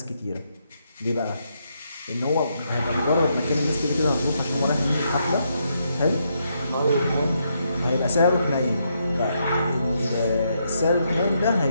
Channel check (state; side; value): inverted; both; correlation -0.78